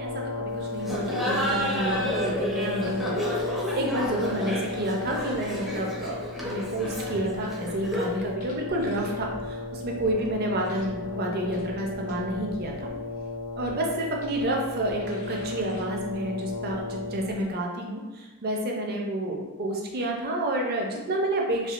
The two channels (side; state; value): both; normal; correlation 0.16